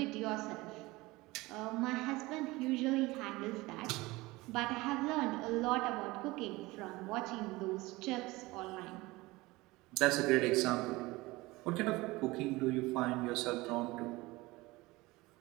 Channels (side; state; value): left; quieter; 21.1 dB